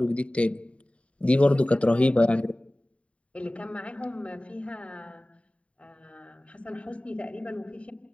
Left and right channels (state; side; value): late; right; 0.062 ms